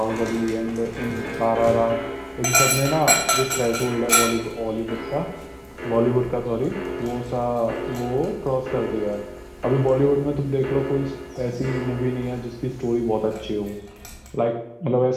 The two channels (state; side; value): identical; both; correlation 1.00